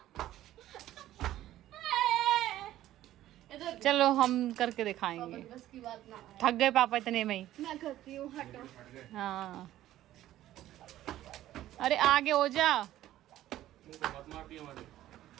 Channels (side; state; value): left; quieter; 13.7 dB